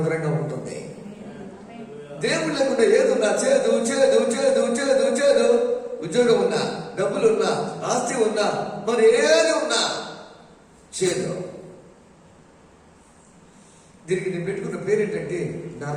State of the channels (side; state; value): both; identical; correlation 1.00